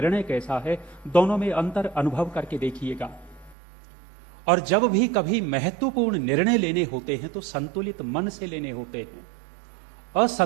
कैसा है, दोनों में अंतर अनुभव करके देखिएगा। और जब भी कभी महत्वपूर्ण निर्णय लेने होते हैं तो संतुलित मन से लेने होते हैं।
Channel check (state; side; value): drops out; left; at 3.6 s